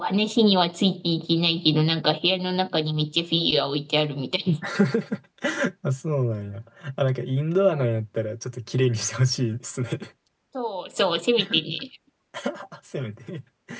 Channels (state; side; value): identical; both; correlation 1.00